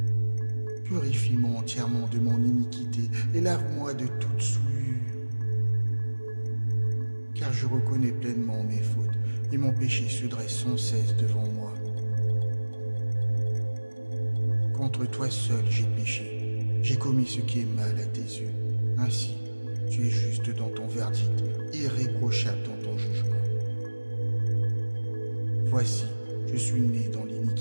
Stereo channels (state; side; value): inverted; both; correlation -1.00